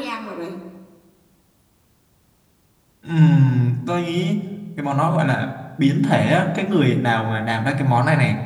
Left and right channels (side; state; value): both; identical; correlation 1.00